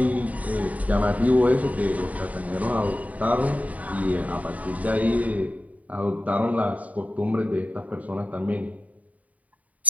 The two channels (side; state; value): left; late; 0.070 ms